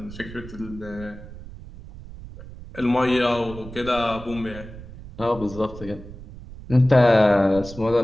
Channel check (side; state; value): right; noise; rumble, 14 dB below the sound